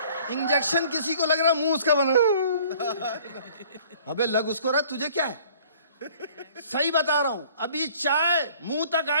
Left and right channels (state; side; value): inverted; both; correlation -0.53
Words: इंजेक्शन किसी को लग रहा मुंह उसका बना। अबे लग उसको रहा, तुझे क्या है। सही बता रहा हूं, अभी चाय मुंह तक